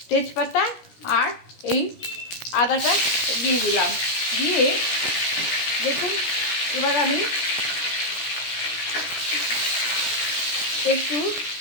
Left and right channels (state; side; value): late; right; 17 ms